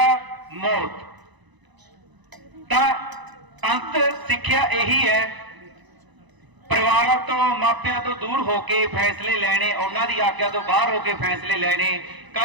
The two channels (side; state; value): left; late; 1.0 ms